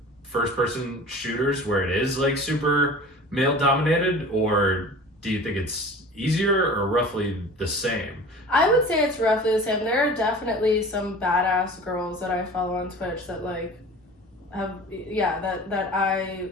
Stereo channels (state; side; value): normal; both; correlation 0.40